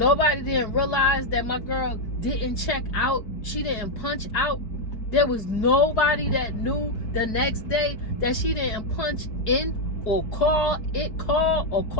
didn't realize that my girl didn't check out, she didn't punch out? There was nobody that knew the next day that she didn't punch in or call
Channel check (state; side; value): late; right; 4.6 ms